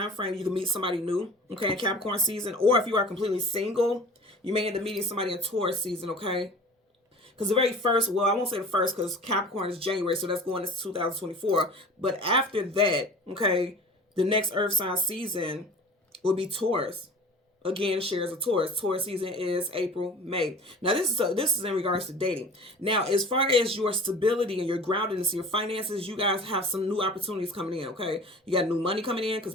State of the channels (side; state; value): both; normal; correlation 0.41